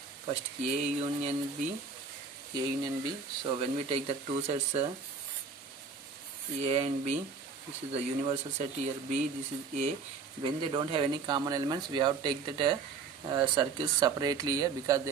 First A union B. A union B. So when we take the two sets A and B, this is the universal set here B, this is A. When they don't have any common elements, we have to take that circles separately here because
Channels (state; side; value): quieter; left; 5.2 dB